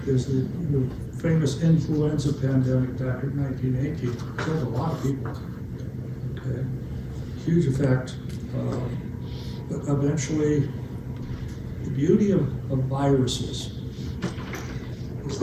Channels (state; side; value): identical; both; correlation 1.00